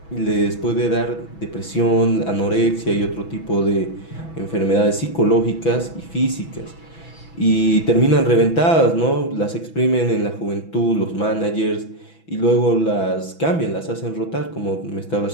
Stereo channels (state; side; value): late; right; 6.1 ms